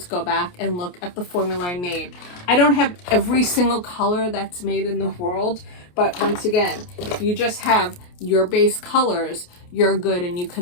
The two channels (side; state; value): right; late; 28 ms